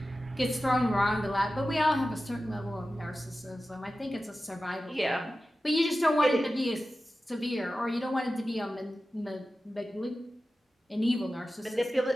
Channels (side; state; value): both; normal; correlation 0.94